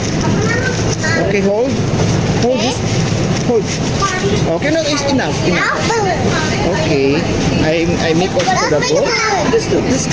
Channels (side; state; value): both; identical; correlation 1.00